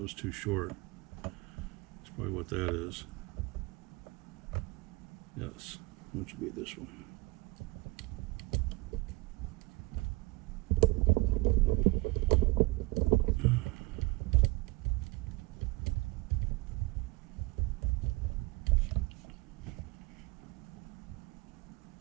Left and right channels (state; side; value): quieter; left; 22.0 dB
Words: was too short. That's probably what that is. Yes, which would be this one.